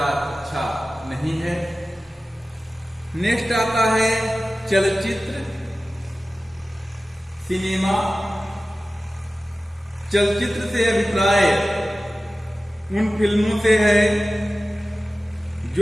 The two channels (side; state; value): both; normal; correlation 0.96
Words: अच्छा नहीं है। नेक्स्ट आता है चलचित्र, सिनेमा। चलचित्र से अभिप्राय उन फिल्मों से है